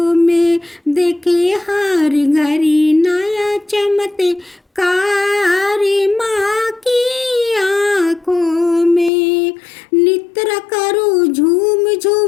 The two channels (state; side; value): drops out; right; at 9.1 s